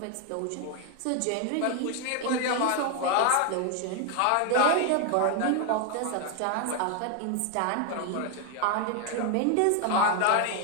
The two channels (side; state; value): both; different; correlation 0.01